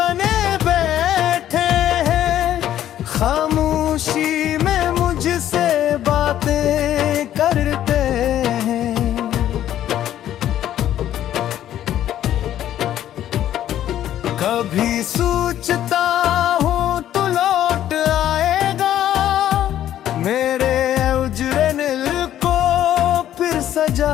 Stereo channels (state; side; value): quieter; right; 11.7 dB